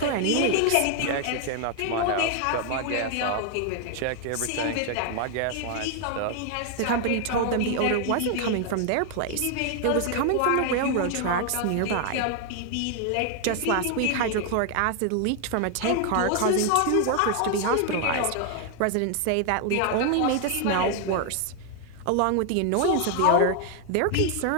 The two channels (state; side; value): different; both; correlation 0.00